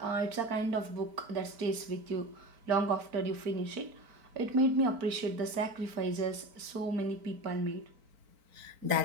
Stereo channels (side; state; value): left; late; 4.4 ms